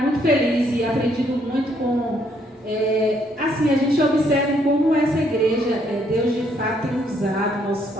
muito feliz e aprendido muito com... assim, a gente observa como essa igreja, Deus de fato tem usado nossos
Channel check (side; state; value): both; normal; correlation 0.70